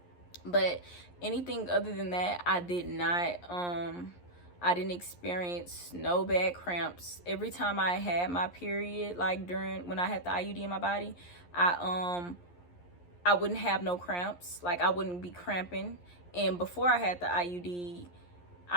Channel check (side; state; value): right; late; 11 ms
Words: but anything other than that, I didn't experience no bad cramps. Every time I had my period, like when I had the IUD in my body, I wouldn't have no cramps. Like I wouldn't be cramping. And before I had the IUD,